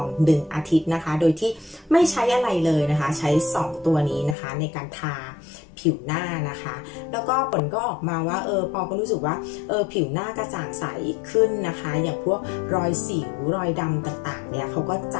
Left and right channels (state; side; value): drops out; right; at 4.4 s